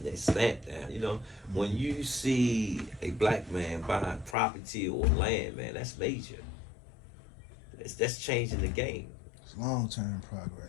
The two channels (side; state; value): right; drops out; at 4.4 s